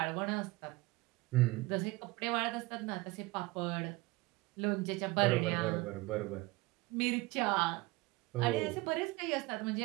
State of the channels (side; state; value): left; quieter; 21.6 dB